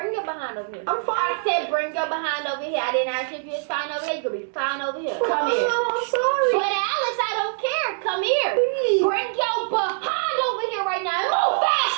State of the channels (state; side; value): silent; left; 63 dB below the other